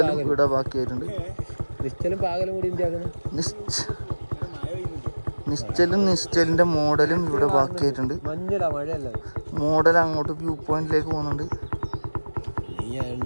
ഇവിടെ ബാക്കിയായിട്ടുണ്ട്. നിശ്ചലിന്റെ മോഡലും ഇവിടെ ബാക്കിയായിട്ടുണ്ട്. മോഡൽ അങ്ങോട്ട് വ്യൂ പോയിന്റിലേക്ക് പോകുന്നുണ്ട്.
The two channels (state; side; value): inverted; both; correlation -1.00